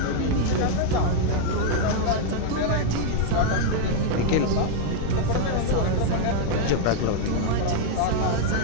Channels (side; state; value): both; different; correlation 0.00